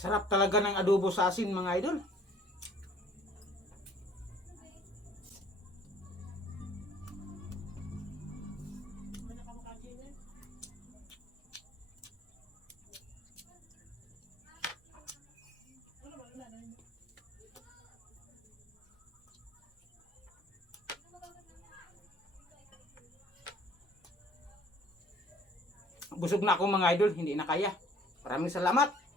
Sarap talaga ng adobo sa asin mga idol. Busog na ako mga idol, hindi na kaya. Maraming salamat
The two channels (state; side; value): normal; both; correlation 0.56